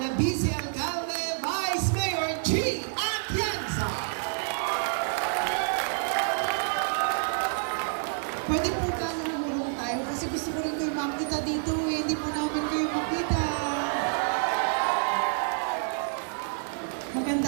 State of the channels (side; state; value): left; silent; digital silence